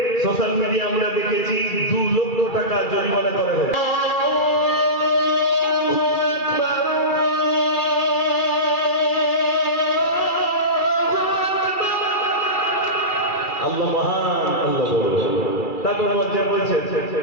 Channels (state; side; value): late; right; 2.3 ms